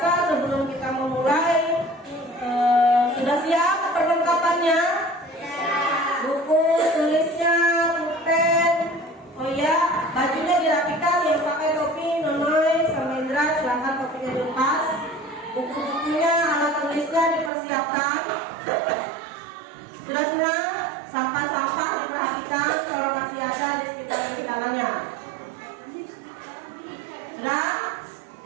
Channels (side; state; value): left; drops out; at 17.5 s